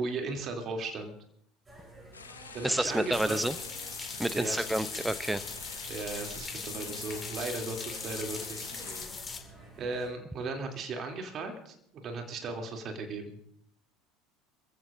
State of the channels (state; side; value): normal; both; correlation 0.77